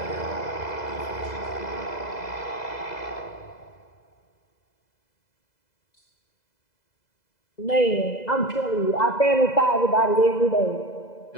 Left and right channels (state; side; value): late; right; 2.0 ms